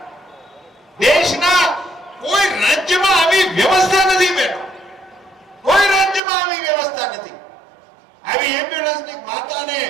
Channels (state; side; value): drops out; left; at 6.2 s